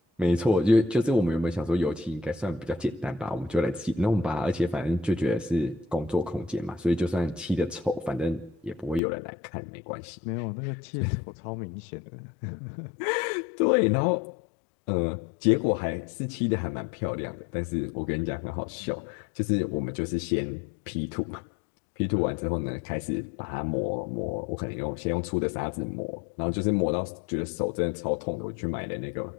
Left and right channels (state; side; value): drops out; right; at 9.0 s